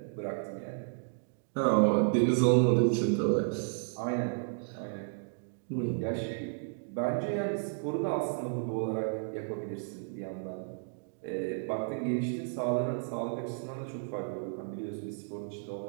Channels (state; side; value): silent; left; digital silence